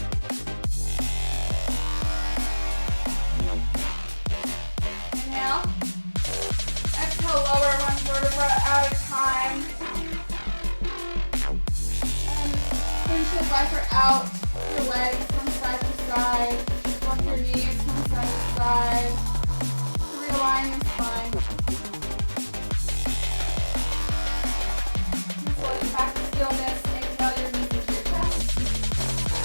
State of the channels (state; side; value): inverted; both; correlation -1.00